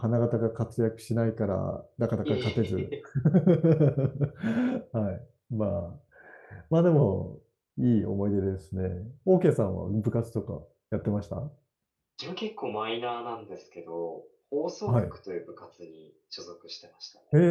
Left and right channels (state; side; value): identical; both; correlation 1.00